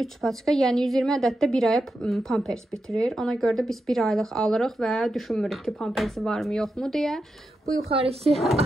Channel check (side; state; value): both; normal; correlation 0.88